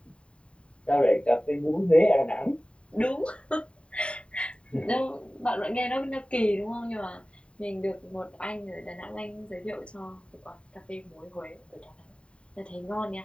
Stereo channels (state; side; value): late; right; 0.058 ms